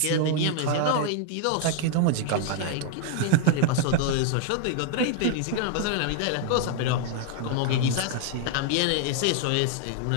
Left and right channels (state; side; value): different; both; correlation 0.00